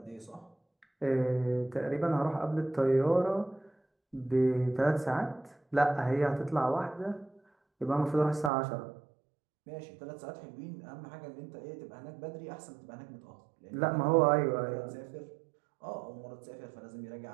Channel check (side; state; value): left; drops out; at 8.5 s